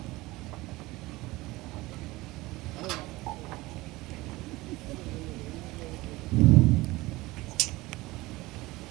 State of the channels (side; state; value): left; quieter; 20.2 dB